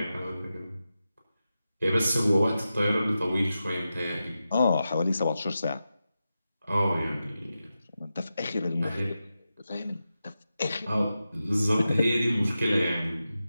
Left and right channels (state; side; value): inverted; both; correlation -0.91